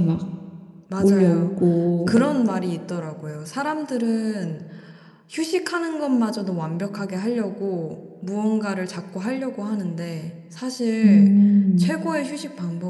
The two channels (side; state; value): both; identical; correlation 1.00